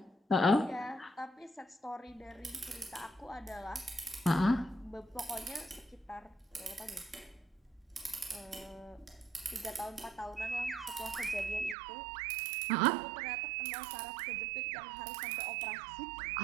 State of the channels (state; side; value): drops out; left; at 11.8 s